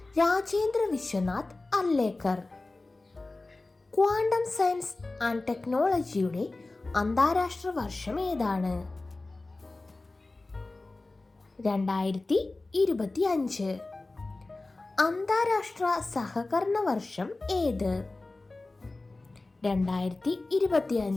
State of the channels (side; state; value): right; quieter; 3.2 dB